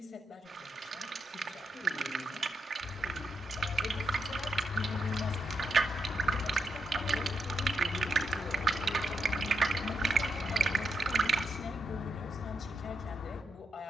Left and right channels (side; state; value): both; normal; correlation 0.82